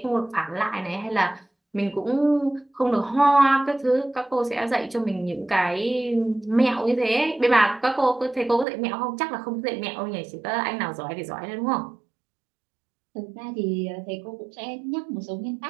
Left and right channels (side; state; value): left; drops out; at 8.7 s